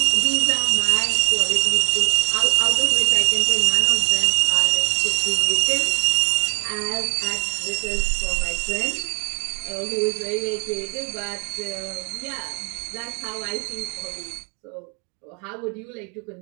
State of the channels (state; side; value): quieter; left; 40.0 dB